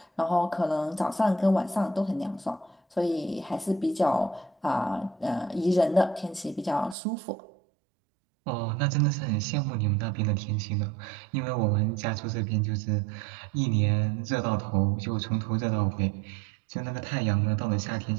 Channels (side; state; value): left; drops out; at 7.0 s